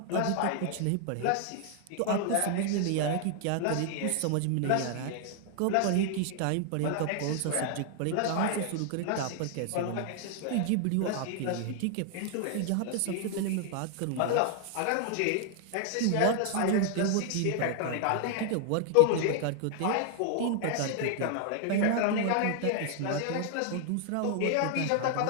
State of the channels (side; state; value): both; different; correlation 0.00